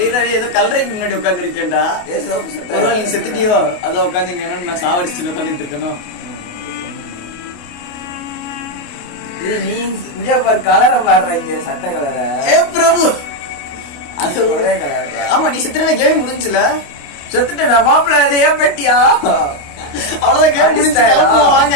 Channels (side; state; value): right; late; 28 ms